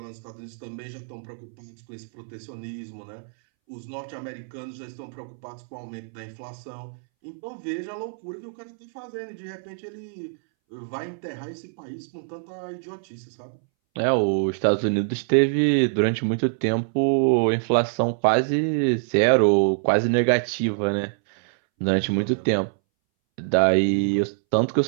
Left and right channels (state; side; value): silent; left; 62 dB below the other